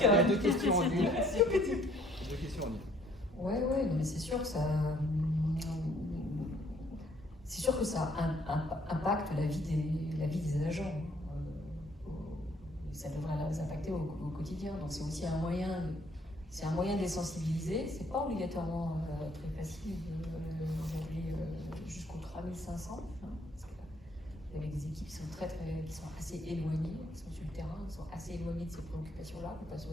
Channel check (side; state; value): both; normal; correlation 0.63